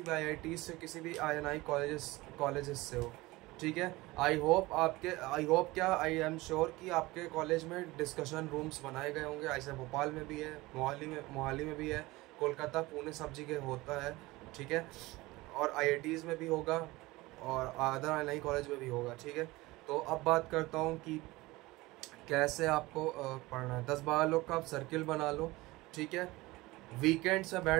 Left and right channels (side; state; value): left; quieter; 20.5 dB